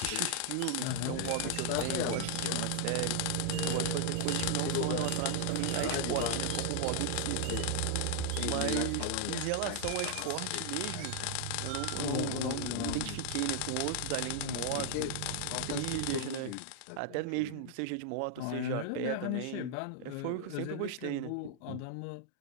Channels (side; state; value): both; different; correlation 0.00